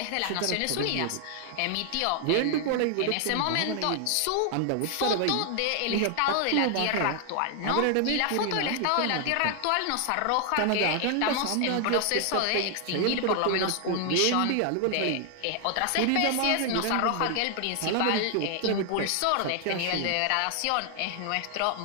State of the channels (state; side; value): different; both; correlation 0.00